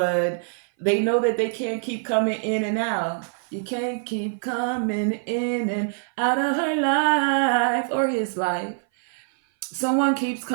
they know that they can't keep coming in and out. You can't keep coming in and out of her life or his life. Someone keeps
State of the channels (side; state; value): left; silent; 58 dB below the other